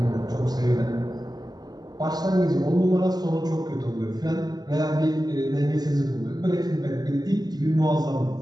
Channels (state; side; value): late; left; 0.19 ms